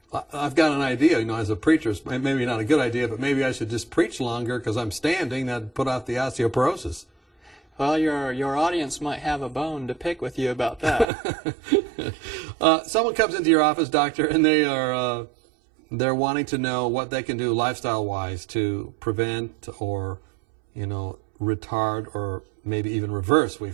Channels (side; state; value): left; drops out; at 11.1 s